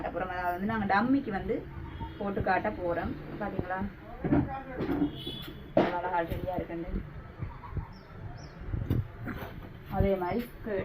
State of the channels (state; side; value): identical; both; correlation 1.00